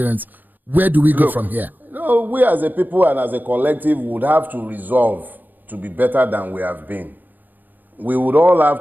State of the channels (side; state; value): left; late; 0.086 ms